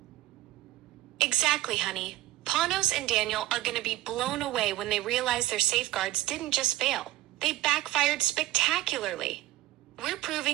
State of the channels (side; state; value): left; quieter; 16.3 dB